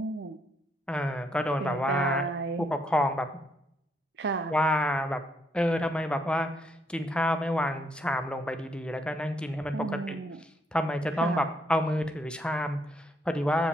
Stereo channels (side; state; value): both; normal; correlation 0.74